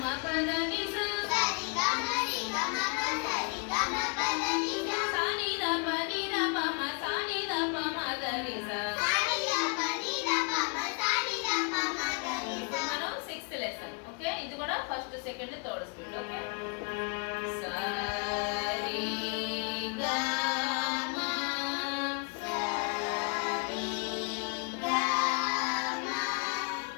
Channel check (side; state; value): right; quieter; 35.7 dB